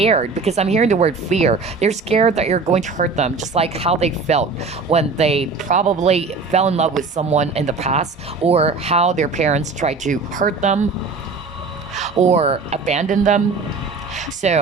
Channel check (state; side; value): quieter; left; 4.3 dB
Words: because I'm hearing the word fear. They're scared that you're going to hurt them, just like how they felt when they probably fell in love with someone in the past, or how their parents tried to hurt them or abandon them.